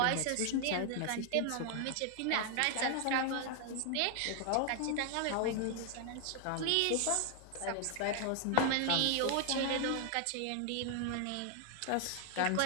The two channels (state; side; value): different; both; correlation 0.00